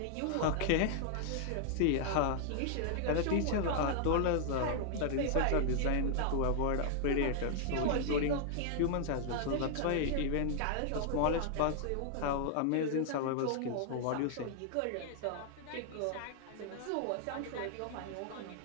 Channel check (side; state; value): both; different; correlation 0.00